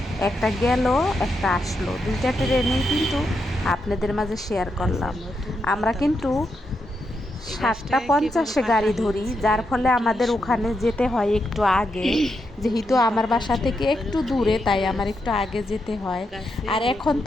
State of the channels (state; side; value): normal; both; correlation 0.83